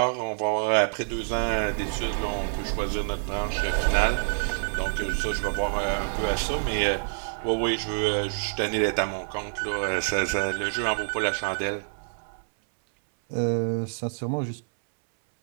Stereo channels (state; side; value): silent; left; 60 dB below the other